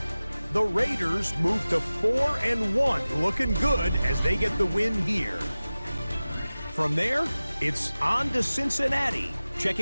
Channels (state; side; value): inverted; both; correlation -0.97